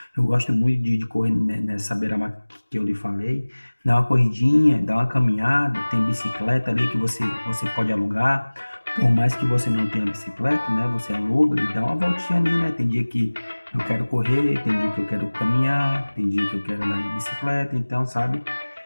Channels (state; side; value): inverted; both; correlation -1.00